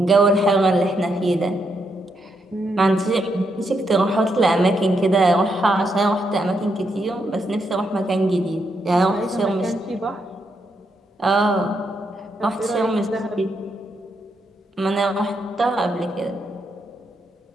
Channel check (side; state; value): both; normal; correlation 0.80